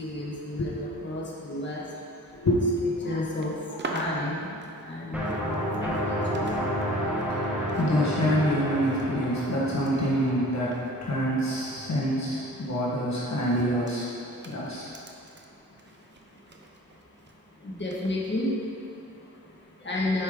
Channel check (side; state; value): both; normal; correlation 0.47